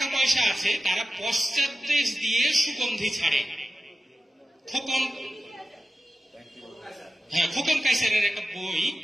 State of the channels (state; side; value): normal; both; correlation 0.93